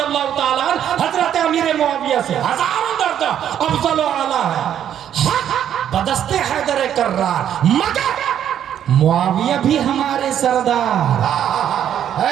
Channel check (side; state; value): left; quieter; 9.9 dB